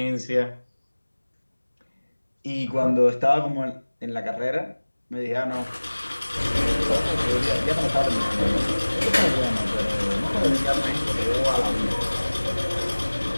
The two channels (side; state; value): both; inverted; correlation -1.00